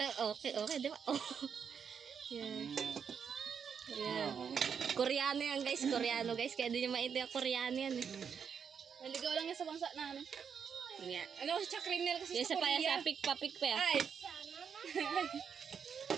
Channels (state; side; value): quieter; left; 7.0 dB